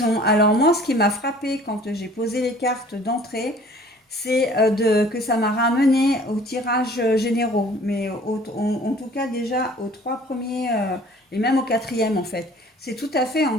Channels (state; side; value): normal; both; correlation 0.51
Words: Alors moi, ce qui m'a frappé quand j'ai posé les cartes d'entrée, c'est que ça m'a ramené au tirage généraux, mais en tout cas déjà aux 3 premiers et même au quatrième en fait. C'est tout à fait en